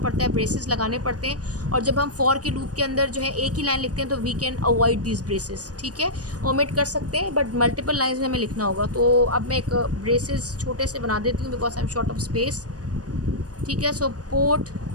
है, ब्रेसेस लगाने पड़ते हैं, और जब हम फॉर के लूप के अंदर जो है एक ही लाइन लिखते हैं तो we can avoid this braces, ठीक है। ओमिट कर सकते हैं, बट मल्टीपल लाइंस में हमें लिखना होगा। तो अब मैं एक ब्रेसेस छोटे से बना देती हूँ because I am short of space, ठीक है। सो पोर्ट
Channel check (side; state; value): left; late; 0.68 ms